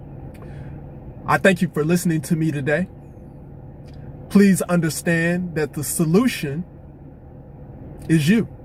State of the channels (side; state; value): both; identical; correlation 1.00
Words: I thank you for listening to me today. Please understand that the solution is you.